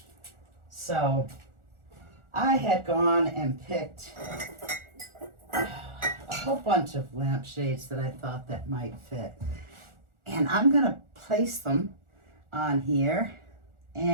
So I had gone and picked a whole bunch of lampshades that I thought that might fit. And I'm gonna place them on here,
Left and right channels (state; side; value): late; left; 1.4 ms